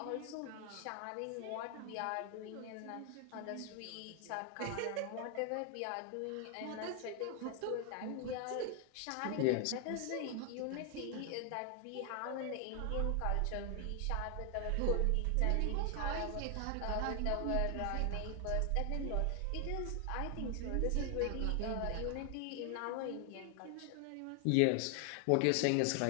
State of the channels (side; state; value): both; different; correlation 0.00